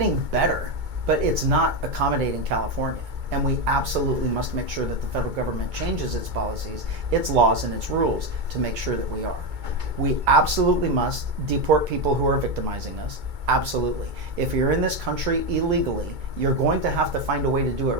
better, but it's not accommodating California. And we absolutely must make sure that the federal government changes its policies, its laws, and its rules to make sure that we are. We absolutely must deport people who are victimizing us. Absolutely. If you're in this country illegally, you're going to have to find a way to do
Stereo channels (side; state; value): left; late; 2.2 ms